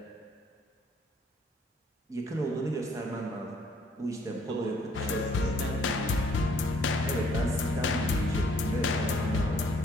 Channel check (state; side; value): normal; both; correlation 0.63